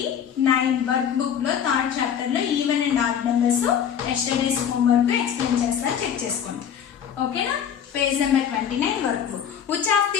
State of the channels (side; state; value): right; quieter; 8.5 dB